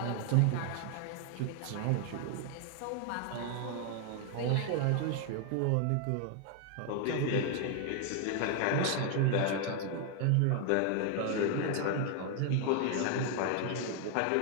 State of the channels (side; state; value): both; different; correlation 0.00